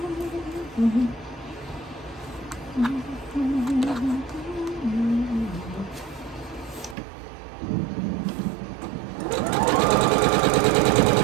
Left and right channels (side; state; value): left; drops out; at 7.0 s